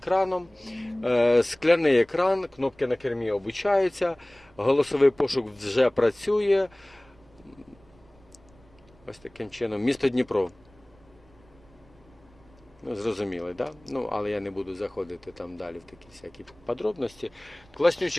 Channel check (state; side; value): noise; right; rumble, 28 dB below the sound